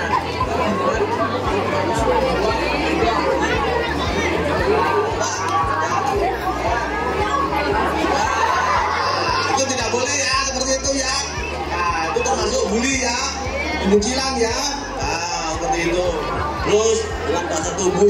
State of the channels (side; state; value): both; identical; correlation 1.00